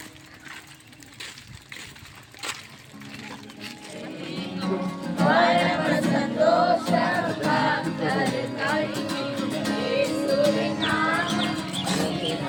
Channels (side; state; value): both; identical; correlation 1.00